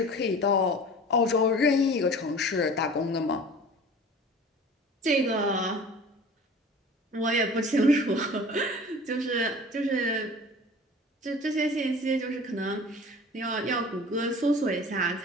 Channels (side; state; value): both; normal; correlation 0.42